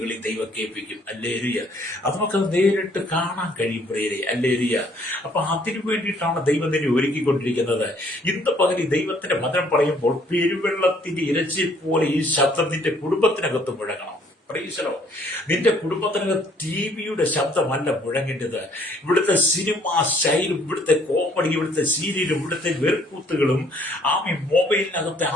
ദൈവം കേൾപ്പിക്കും. അല്ലേലൂയ. അത് നമുക്ക് നേരിട്ട് കാണാൻ കഴിയും പ്രിയരെ. അല്ലേലൂയ. അപ്പൊ അതിനു വേണ്ടിയിട്ടാണ് ദൈവം തന്നെ ഒരുക്കിക്കൊണ്ടിരിക്കുന്നത്. ഇന്ന് പകൽ ദൈവത്തിന്റെ വചനം പറയുമ്പോൾ പെരുവെള്ളത്തിന്റെ ഇരച്ചിൽ പോലെ ഈ ശബ്ദം നിന്റെ കുടുംബത്തിനകത്ത് മുഴങ്ങണം. നിന്റെ കുടുംബത്തിനകത്ത് ടിവിയുടെ ശബ്ദമല്ല മുഴങ്ങേണ്ടത്. ഇവിടുത്തെ സിനിമ സ്റ്റൈലും ഇവിടുത്തെ കോമഡി, ഇവിടുത്തെ സീരിയലും ഇവിടുത്തെ വെറുക്കൂത്തുകളും മൊബൈലിനകത്തെ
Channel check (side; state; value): both; normal; correlation 0.62